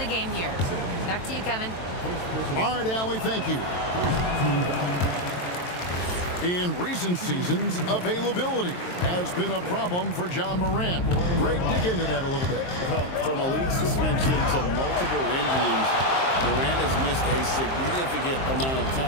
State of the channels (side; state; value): right; late; 23 ms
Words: game here. Back to you, Kevin. All right, Allie, thank you. In recent seasons, availability has been a problem for Ja Morant. Greg, dig into that a little bit. Well, from a league suspension to multiple injuries, Morant has missed a significant amount of